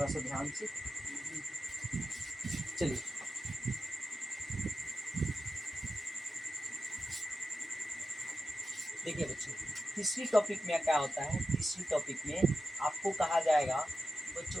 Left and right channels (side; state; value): both; normal; correlation 0.91